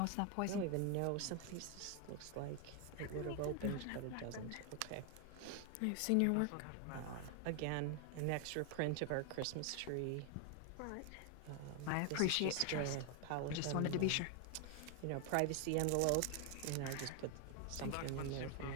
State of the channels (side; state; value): both; different; correlation 0.00